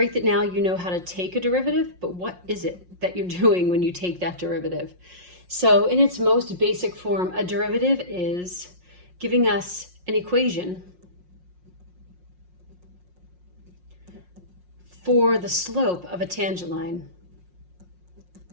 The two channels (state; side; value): late; left; 5.6 ms